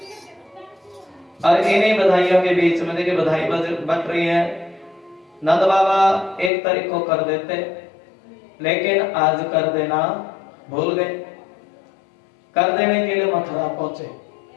और इन्हीं बधाइयों के बीच में देखिए बधाई बट रही है। नंद बाबा एक तारीख को कर देते, लेकिन आज कर देना भूल गए। कर देने के लिए मथुरा पहुंचे।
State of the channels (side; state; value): right; drops out; at 6.5 s